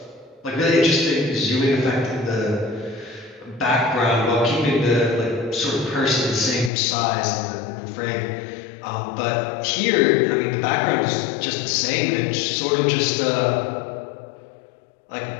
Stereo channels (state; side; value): drops out; right; at 6.7 s